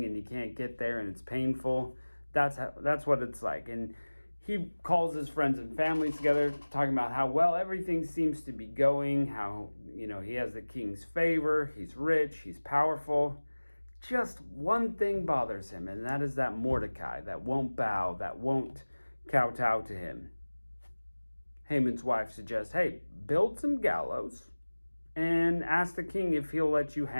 and you can't get there and it's painful. That's what it's like. And he calls his friends and family together, talking about how well everything seems to be going, how, he has the king's favor, he's rich, he's powerful. Just one thing bothers him, and that is that Mordecai, that won't bow, that won't kowtow to him. Haman's wife suggests, hey, build some gallows and ask the king if he'll let you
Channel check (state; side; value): inverted; both; correlation -1.00